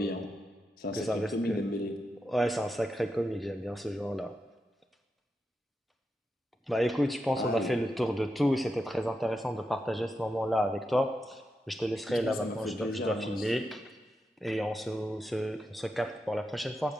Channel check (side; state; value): both; normal; correlation 0.87